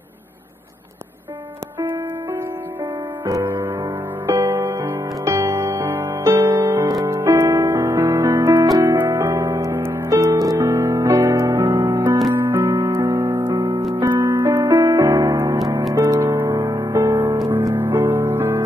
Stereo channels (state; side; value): normal; both; correlation 0.81